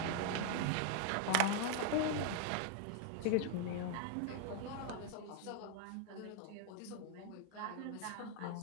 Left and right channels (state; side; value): different; both; correlation 0.01